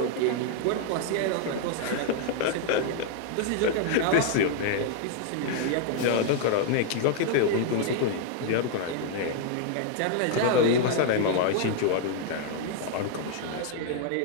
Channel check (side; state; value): both; different; correlation 0.00